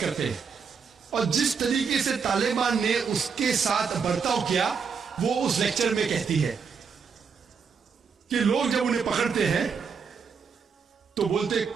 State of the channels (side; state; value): left; quieter; 6.0 dB